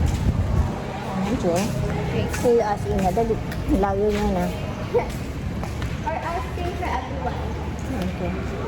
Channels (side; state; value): both; identical; correlation 1.00